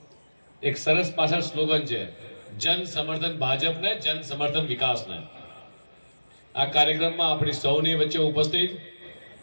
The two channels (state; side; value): inverted; both; correlation -1.00